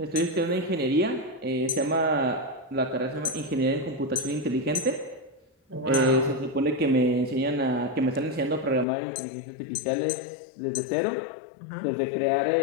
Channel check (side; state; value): right; drops out; at 8.8 s